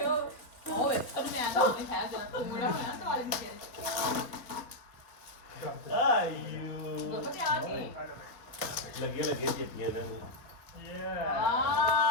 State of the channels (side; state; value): right; late; 3.7 ms